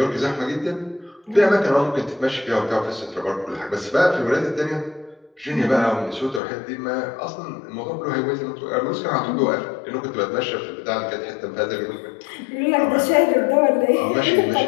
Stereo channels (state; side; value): drops out; right; at 6.4 s